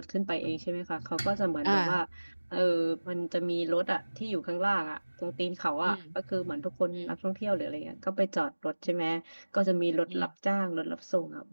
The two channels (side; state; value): both; inverted; correlation -1.00